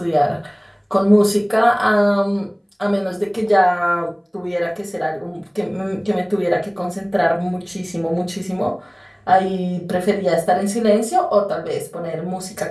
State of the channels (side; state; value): both; identical; correlation 1.00